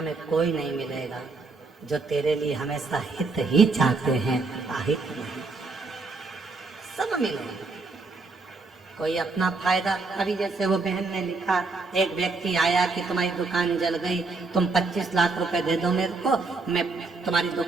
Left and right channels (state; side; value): quieter; left; 3.8 dB